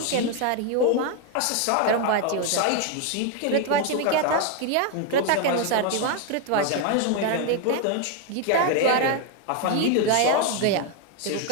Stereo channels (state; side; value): different; both; correlation 0.01